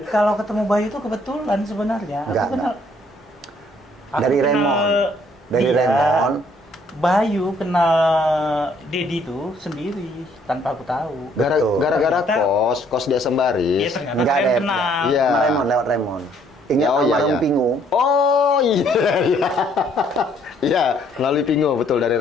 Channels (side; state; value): both; normal; correlation 0.65